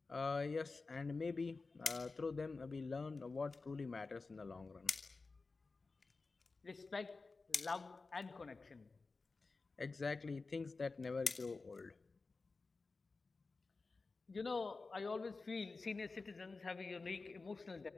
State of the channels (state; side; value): quieter; right; 3.9 dB